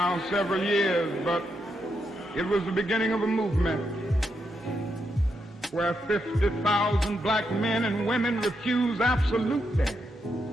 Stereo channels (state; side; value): normal; both; correlation 0.82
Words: several years, but it was the beginning of a movement where 50,000 black men and women refused absolutely